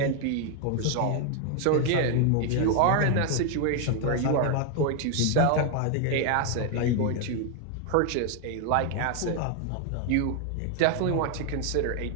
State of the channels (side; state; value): both; different; correlation 0.00